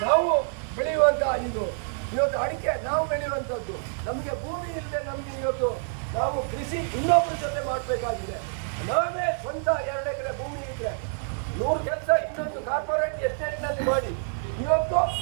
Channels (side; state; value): left; silent; digital silence